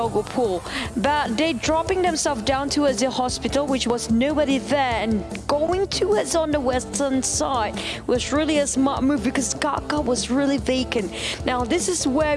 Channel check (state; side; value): identical; both; correlation 1.00